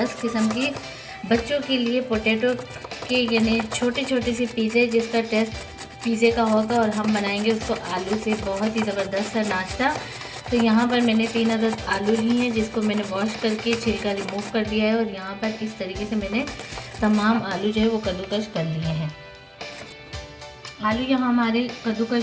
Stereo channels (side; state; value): both; identical; correlation 1.00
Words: किस्म की बच्चों के लिए पोटैटो के यानी छोटे छोटे से पिज़्ज़े, जिसका टेस्ट पिज़्ज़े का होगा और हम बनाएंगे उसको आलू से। बहुत ही ज़बरदस्त सा नाश्ता। तो यहाँ पर मैंने 3 अदद आलू लिए हैं, जिसको मैंने वॉश करके छिलका रिमूव कर दिया है। और यहाँ पर इस तरीके से मैंने तमाम आलू जो है वो कद्दूकश कर लिए हैं। आलू यहाँ हमारे